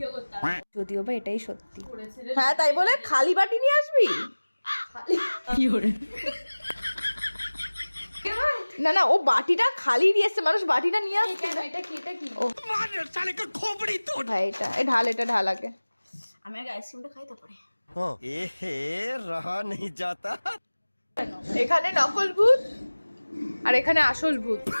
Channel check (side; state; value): both; inverted; correlation -1.00